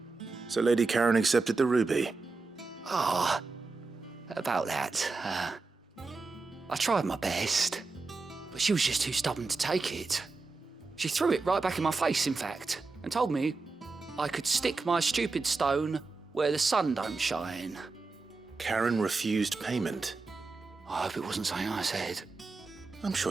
So Lady Karen accepted the ruby. Ah, about that. I tried my best, but she was just too stubborn to take it. She threw it right back in my face, in fact, and told me I could stick my stupid stone where the sun don't shine. Karen refused payment. I hope it wasn't something I said. I'm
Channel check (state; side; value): quieter; left; 4.0 dB